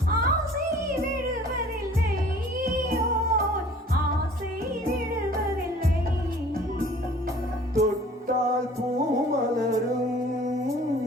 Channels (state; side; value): normal; both; correlation 0.50